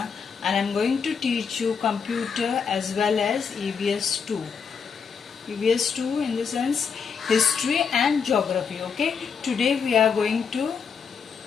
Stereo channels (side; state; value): right; quieter; 6.2 dB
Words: and I am going to teach you computer as well as EVS 2. EVS 2 in the sense history and geography, okay? Today we are going to